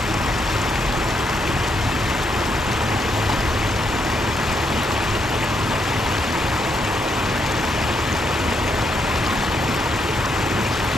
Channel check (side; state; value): both; normal; correlation 0.77